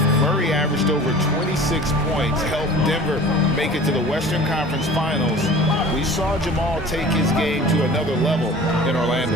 Murray averaged over 26 points, helped Denver make it to the Western Conference Finals. We saw Jamal take his game to another level in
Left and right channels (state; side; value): noise; left; hum, 23 dB below the sound